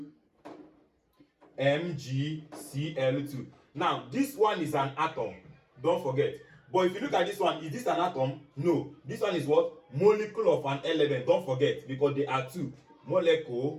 MgCl2. Now this one is an atom. Don't forget. But if you look at this one, is this an atom? No. This one is what? Molecule of an element. Don't forget, because they are two.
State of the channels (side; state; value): both; identical; correlation 1.00